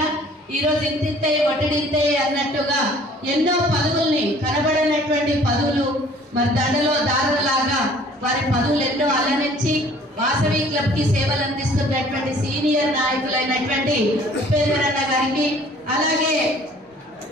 ఈరోజు ఇంతింతే వడ్డింతే అన్నట్టుగా ఎన్నో పదవుల్ని, కనబడినటువంటి పదవులు మరి దండలో దారులాగా వారి పదవులు ఎన్నో అలరించి వాసవి క్లబ్ కి సేవలు అందిస్తున్నటువంటి సీనియర్ నాయకులైనటువంటి ఉపేందర్ అన్న గారికి, అలాగే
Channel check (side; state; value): both; normal; correlation 0.54